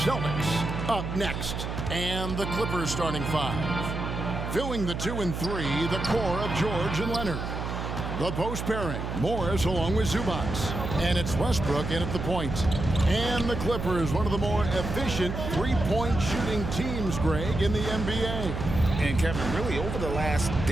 Celtics up next. And the Clippers starting five. Filling the 2 and 3, the core of George and Leonard. The post pairing, Morris along with Zubac. And it's Westbrook in at the point. And the Clippers, one of the more efficient three-point shooting teams, Greg, in the NBA. And Kevin, really over the last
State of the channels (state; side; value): noise; right; hum, 5 dB below the sound